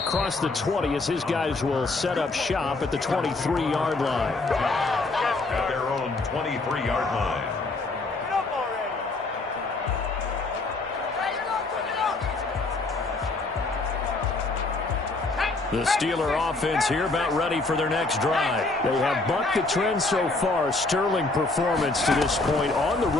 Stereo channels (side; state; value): right; quieter; 3.3 dB